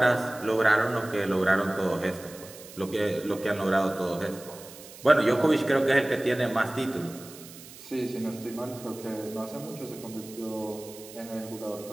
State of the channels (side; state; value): right; noise; hiss, 17 dB below the sound